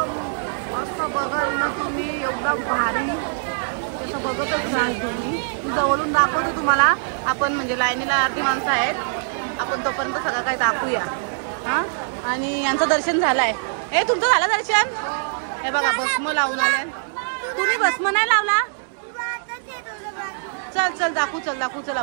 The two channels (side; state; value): left; silent; digital silence